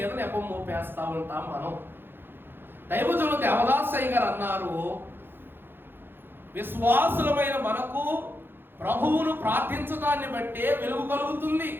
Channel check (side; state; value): left; late; 0.10 ms